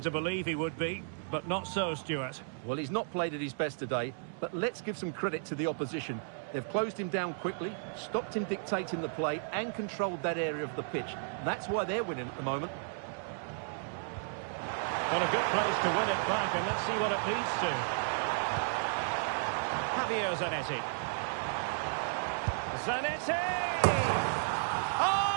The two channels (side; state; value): left; silent; 55 dB below the other